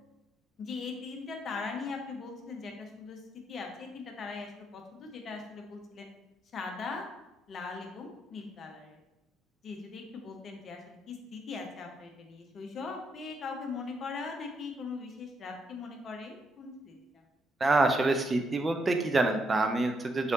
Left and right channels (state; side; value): normal; both; correlation 0.77